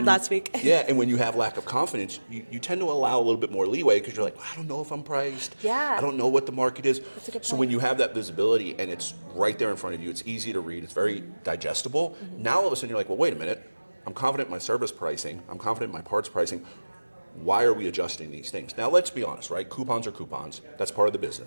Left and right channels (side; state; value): both; inverted; correlation -1.00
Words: last week. Yeah, and when you have lack of confidence, you tend to allow a little bit more leeway because you're like, I don't know if I'm priced. Yeah. I don't know what the market is. That's a good So point. when you have that visibility and it's right there in front of you, it's easy to read, it's very digestible. Now all of a sudden you're like, well, wait a minute. I'm confident in my service pricing. I'm confident in my parts pricing. Why are we adjusting these things? Now, let's be honest, right? Coupons are coupons. That's part of the